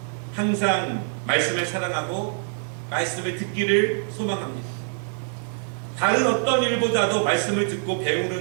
항상 말씀을 사랑하고 말씀을 듣기를 소망합니다. 다른 어떤 일보다도 말씀을 듣고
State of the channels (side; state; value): left; silent; 62 dB below the other